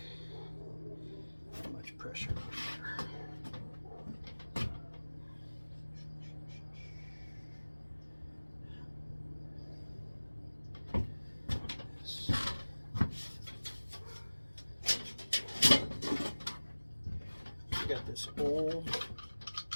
that much pressure in there? Got this old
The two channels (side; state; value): both; inverted; correlation -1.00